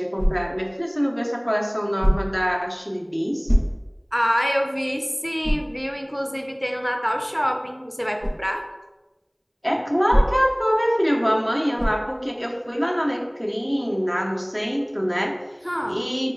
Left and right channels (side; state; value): both; identical; correlation 1.00